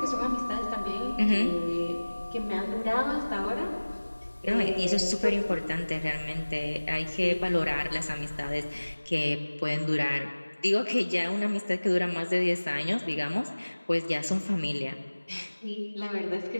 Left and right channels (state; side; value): inverted; both; correlation -1.00